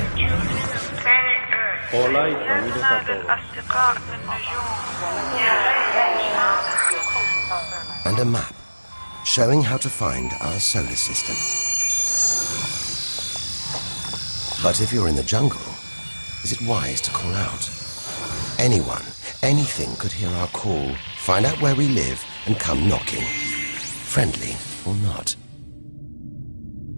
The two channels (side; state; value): both; inverted; correlation -1.00